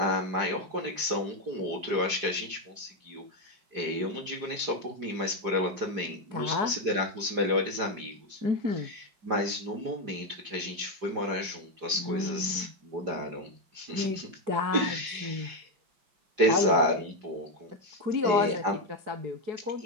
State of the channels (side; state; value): left; late; 5.0 ms